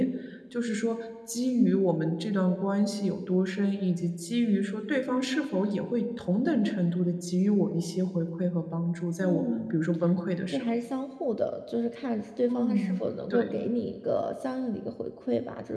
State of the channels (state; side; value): identical; both; correlation 1.00